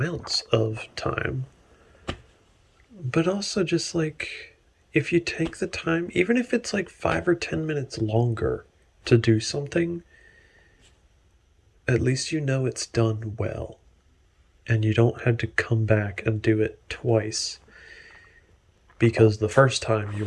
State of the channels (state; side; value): identical; both; correlation 1.00